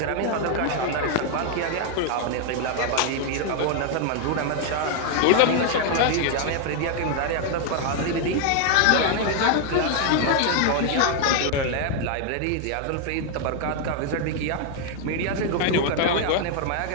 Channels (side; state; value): both; different; correlation 0.00